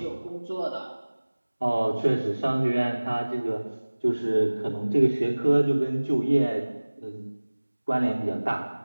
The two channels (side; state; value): both; inverted; correlation -1.00